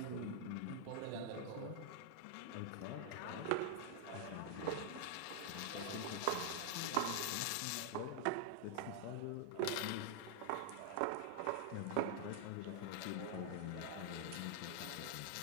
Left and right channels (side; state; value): both; different; correlation 0.00